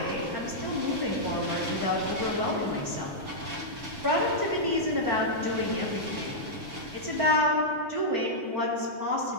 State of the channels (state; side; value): late; left; 6.8 ms